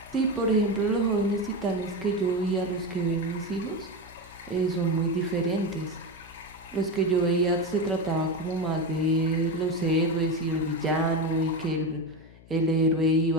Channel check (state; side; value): noise; left; hum, 22 dB below the sound